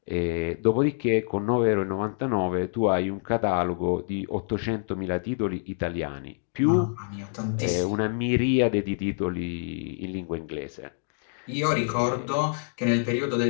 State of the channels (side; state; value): right; silent; digital silence